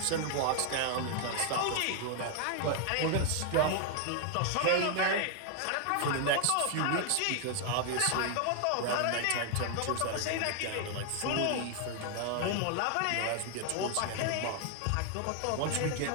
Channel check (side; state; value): both; different; correlation 0.00